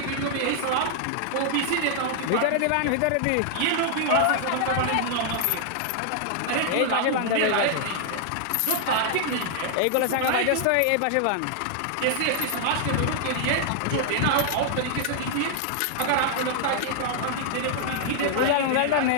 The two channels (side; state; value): both; different; correlation 0.00